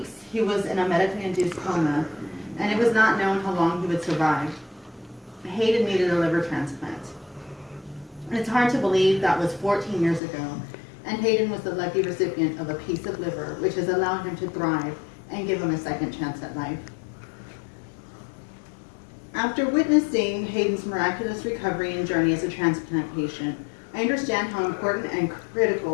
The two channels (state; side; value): drops out; right; at 10.2 s